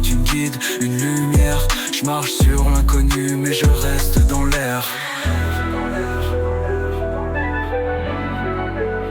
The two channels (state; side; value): identical; both; correlation 1.00